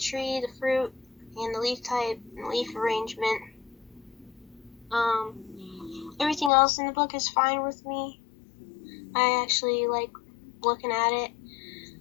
the fruit, and the leaf type and leaf arrangement. Everything else in the book is fine with me. I actually like looking at it.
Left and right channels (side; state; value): right; drops out; at 6.5 s